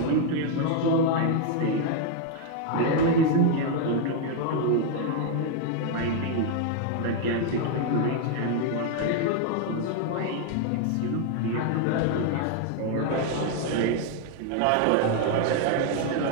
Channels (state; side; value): different; both; correlation 0.00